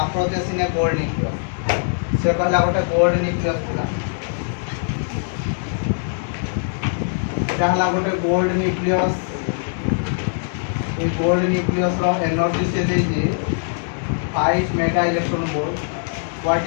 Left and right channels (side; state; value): right; silent; digital silence